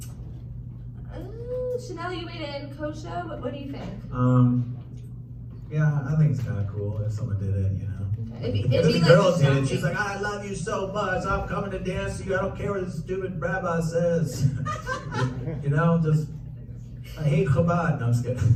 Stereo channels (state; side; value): identical; both; correlation 1.00